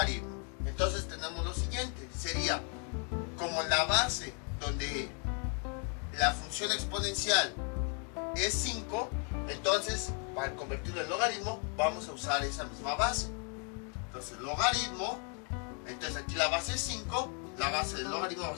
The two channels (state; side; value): quieter; right; 39.4 dB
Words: Entonces tenemos lo siguiente, sería como la base donde la función exponencial es 5, entonces para convertirlo en logaritmo vamos a usar esa misma base. Entonces logaritmo, entonces aquí la base es 5, la base del logaritmo va a